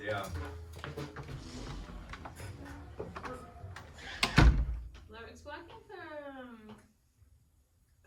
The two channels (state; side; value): identical; both; correlation 1.00